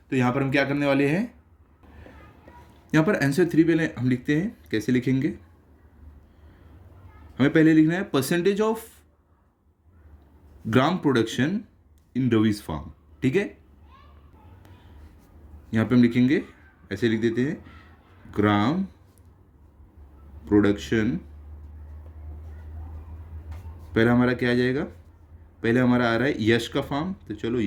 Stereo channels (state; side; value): identical; both; correlation 1.00